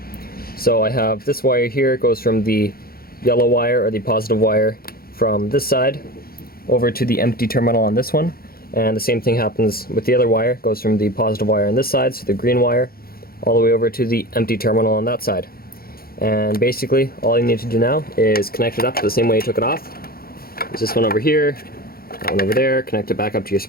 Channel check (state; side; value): late; right; 0.44 ms